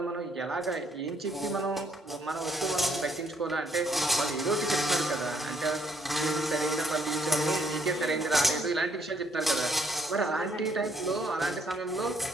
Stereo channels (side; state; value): both; normal; correlation 0.70